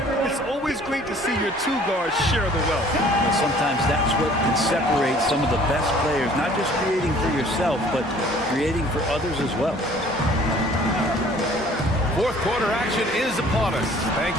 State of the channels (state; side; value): normal; both; correlation 0.53